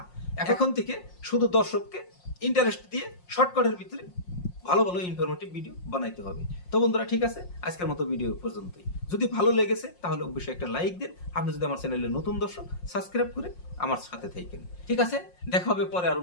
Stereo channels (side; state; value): right; late; 5.6 ms